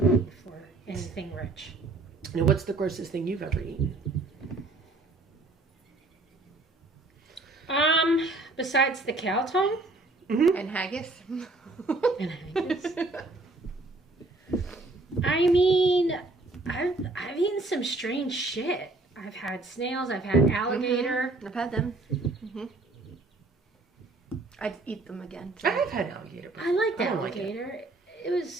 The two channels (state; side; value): quieter; left; 3.2 dB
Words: eat for anything rich. Now, what's the grossest thing you've ever eaten? Besides the cow tongue And haggis. and haggis. I mean, I've eaten some strange shit. I've had snails. I've had alligator. I've had them. I'd eat them again. I have had alligator. I liked I don't like it. alligator. It